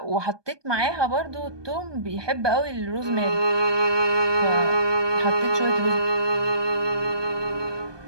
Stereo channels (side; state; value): left; late; 1.2 ms